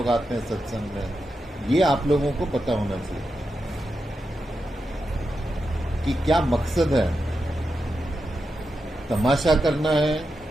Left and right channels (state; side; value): normal; both; correlation 0.88